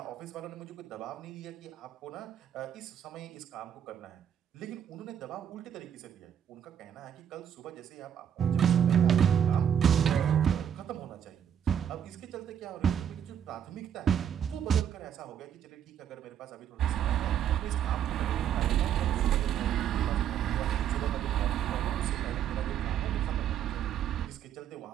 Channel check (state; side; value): quieter; left; 9.1 dB